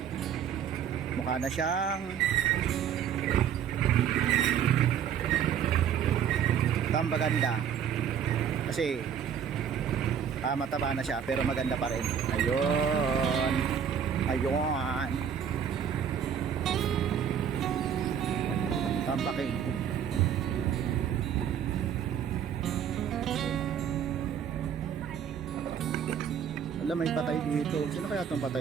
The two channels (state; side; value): quieter; left; 8.3 dB